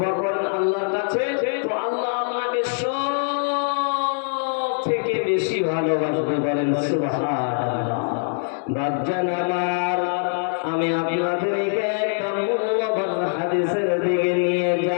করেন আল্লাহর কাছে, তো আল্লাহ আপনাকে সব থেকে বেশি ভালোবাসবে। বলেন সুবহানাল্লাহ। বাপজান আমার, আমি আপনাদেরকে একটা মূল্যবান হাদিসের দিকে নিয়ে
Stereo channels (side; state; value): right; silent; digital silence